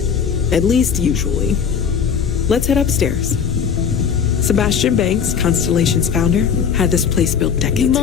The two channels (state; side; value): quieter; right; 7.1 dB